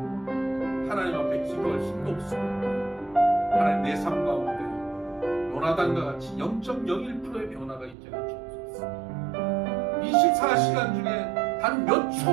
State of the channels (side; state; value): left; drops out; at 8.0 s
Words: 하나님 앞에 기도할 힘도 없습니다. 하나님, 내 삶 가운데 요나단과 같이 0.01%의 변화가 있게 하여 주옵소서. 24시간 중에 단 몇